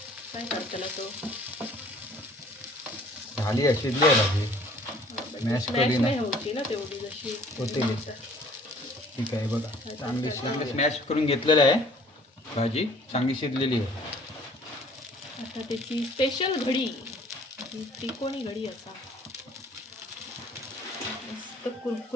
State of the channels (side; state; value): both; normal; correlation 0.54